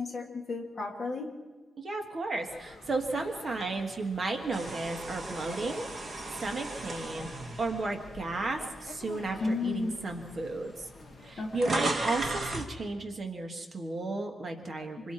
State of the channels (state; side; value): normal; both; correlation 0.84